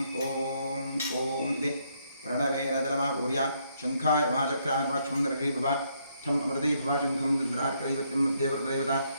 इति प्रणवेन जलमापूर्य शङ्खाय नमः चक्राय नमः क्षं दर्शयिभव ठम् अमृते भव शङ्खं चन्द्रार्कदैवत्यं मध्ये प्रदेवता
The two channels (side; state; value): both; inverted; correlation -0.73